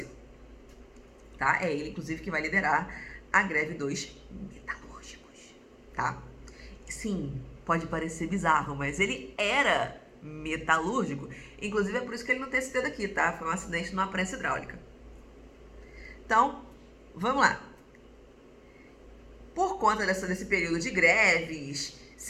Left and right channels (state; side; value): identical; both; correlation 1.00